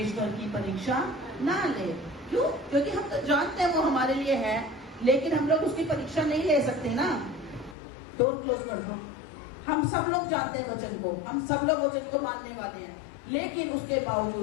की परीक्षा ना ले। क्यों? क्योंकि हम तो जानते हैं वो हमारे लिए है, लेकिन हम लोग उसकी परीक्षा नहीं ले सकते ना। डोर क्लोज कर दो। हम सब लोग जानते हैं वचन को, हम सब लोग वचन को मानने वाले हैं, लेकिन उसके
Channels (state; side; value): drops out; right; at 7.8 s